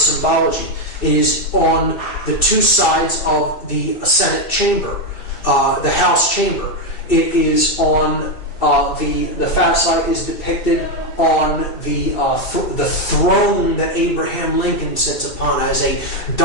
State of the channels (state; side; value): late; right; 2.6 ms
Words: It is on the two sides of the Senate chamber, the House chamber. It is on the fasci is depicted on the throne that Abraham Lincoln sits upon as a